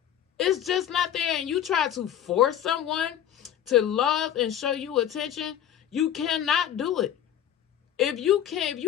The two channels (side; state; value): right; quieter; 10.4 dB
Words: It's just not there. And you try to force someone to love and show you attention, you cannot do it. If you